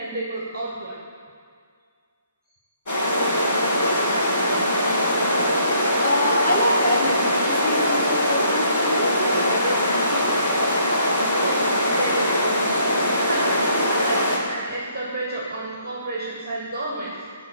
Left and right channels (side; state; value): both; inverted; correlation -0.64